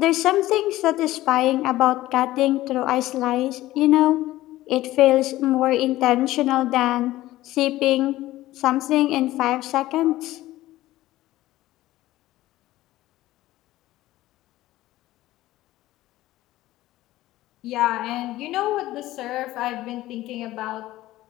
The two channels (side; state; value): right; quieter; 16.1 dB